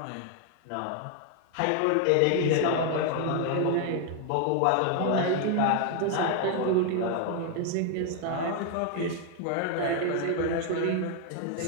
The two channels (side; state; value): both; different; correlation 0.01